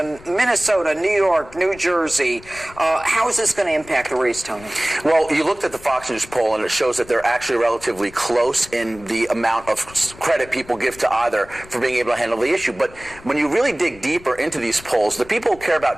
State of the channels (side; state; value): left; noise; rumble, 21 dB below the sound